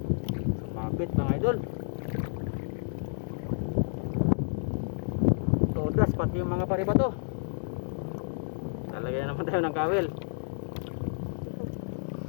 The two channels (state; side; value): silent; right; digital silence